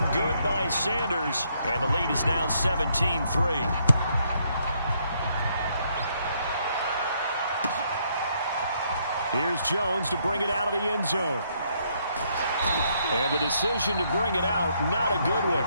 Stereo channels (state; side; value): inverted; both; correlation -0.72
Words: good by Sanders, and the lead is now 17-3. Here's Jones to bring it out of the end zone. And the decision to bring it out, not a good one,